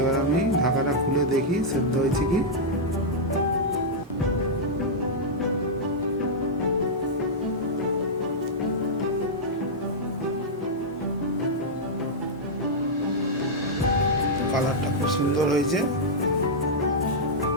আমি ঢাকাটা খুলে দেখি সেদ্ধ হয়েছে কি। কালারটা খুব সুন্দর হয়েছে।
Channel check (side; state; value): both; normal; correlation -0.07